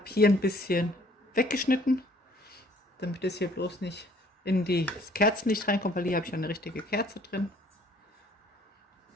hier ein bisschen weggeschnitten, damit es hier bloß nicht in das Kerzenlicht reinkommt, weil hier habe ich eine richtige Kerze drin.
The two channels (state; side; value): normal; both; correlation 0.58